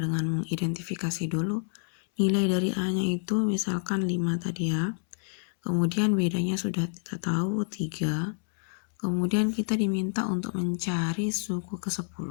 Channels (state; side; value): silent; right; 59 dB below the other